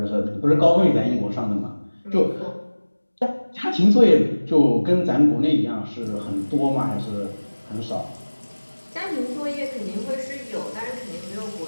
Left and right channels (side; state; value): both; inverted; correlation -1.00